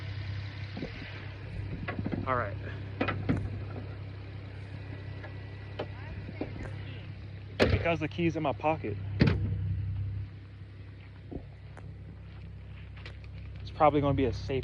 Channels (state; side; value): identical; both; correlation 1.00